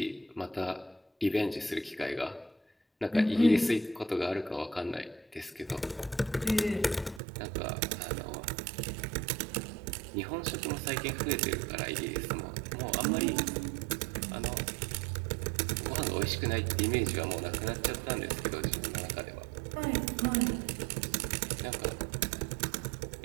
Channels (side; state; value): left; drops out; at 7.2 s